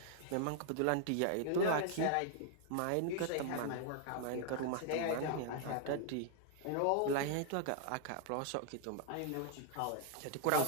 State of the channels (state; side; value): different; both; correlation -0.01